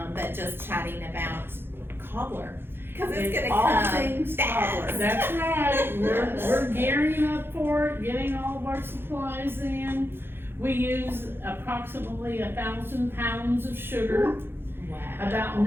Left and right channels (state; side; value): late; left; 0.11 ms